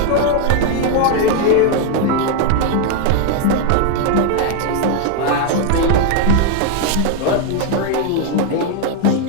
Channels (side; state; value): both; different; correlation 0.00